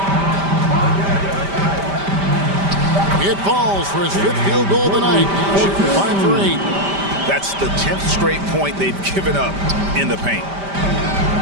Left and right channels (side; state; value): left; late; 5.1 ms